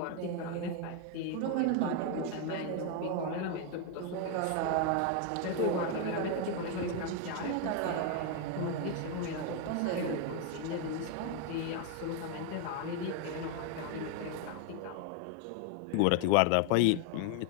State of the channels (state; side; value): different; both; correlation 0.00